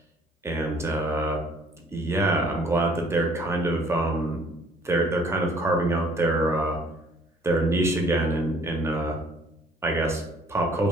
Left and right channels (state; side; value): normal; both; correlation 0.58